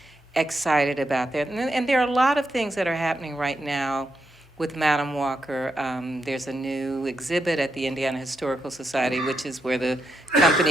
excited about that. And there are a lot of things that are happening right now with Madam Walker. There's a new exhibit at the Indiana Historical Society, which is where the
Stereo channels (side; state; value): both; normal; correlation 0.83